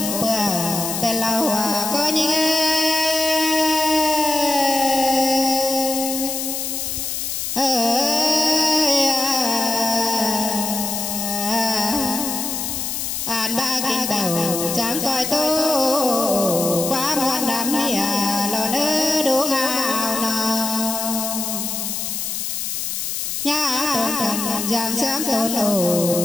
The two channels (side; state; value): left; noise; hiss, 3 dB below the sound